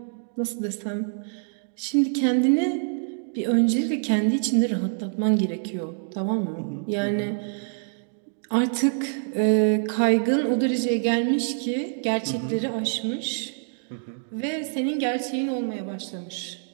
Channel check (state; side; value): silent; left; digital silence